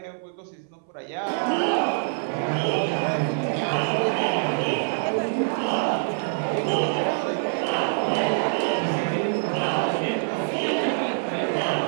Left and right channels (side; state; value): left; silent; 62 dB below the other